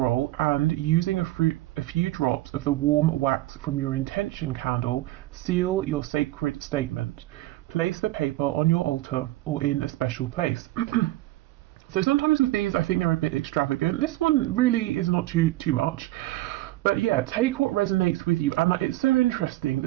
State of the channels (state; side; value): quieter; left; 17.0 dB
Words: and, using a few drops of the warm wax from your intention candle, seal your sacred statement. Place the paper on your altar or in a special place. So sometimes with these, I think they're a bit extravagant. This one really is not too much. But yeah, take what resonates with you. And it's so interesting